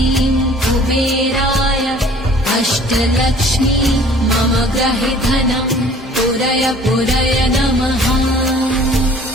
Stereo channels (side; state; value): both; normal; correlation 0.51